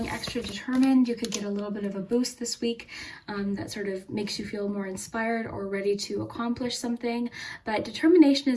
extra determined. You could get a little bit of a boost this week that sort of makes you feel more inspired or ready to accomplish something. But determination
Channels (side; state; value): both; identical; correlation 1.00